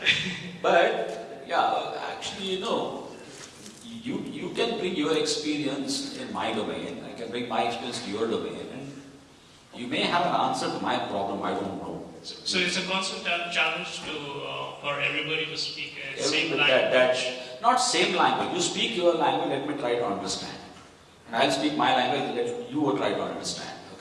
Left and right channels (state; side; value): identical; both; correlation 1.00